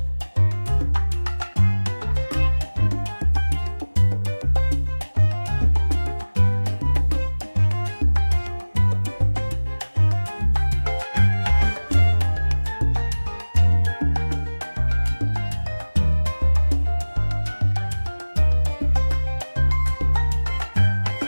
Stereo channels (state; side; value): inverted; both; correlation -1.00